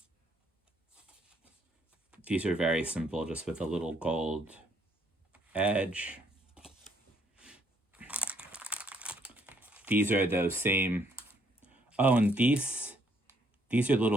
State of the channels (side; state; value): both; normal; correlation 0.68